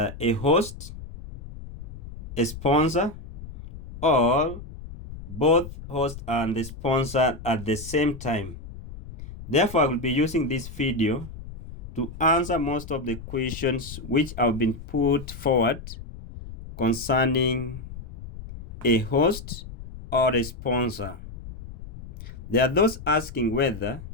host, a sponsor, or both host and the sponsor at the same time. Therefore, I will be using this video to answer most of the questions which have been put forward concerning a host or a sponsor. There are those asking whether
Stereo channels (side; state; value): left; noise; rumble, 13 dB below the sound